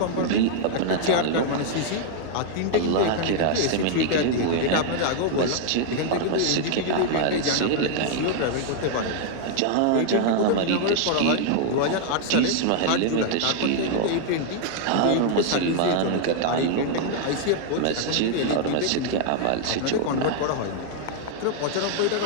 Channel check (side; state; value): both; different; correlation 0.00